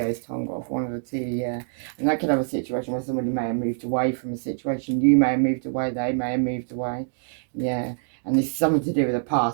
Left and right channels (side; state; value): left; silent; digital silence